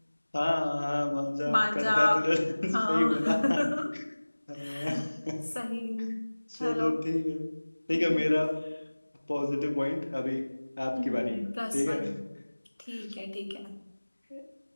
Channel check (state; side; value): inverted; both; correlation -1.00